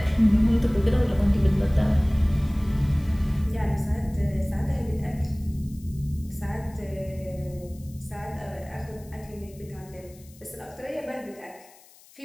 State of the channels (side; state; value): left; noise; hiss, 25 dB below the sound